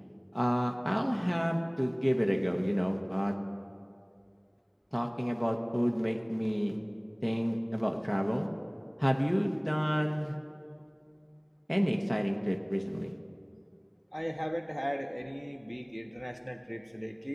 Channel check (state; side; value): identical; both; correlation 1.00